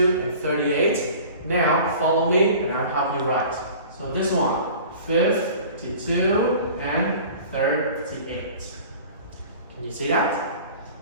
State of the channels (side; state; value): both; inverted; correlation -0.43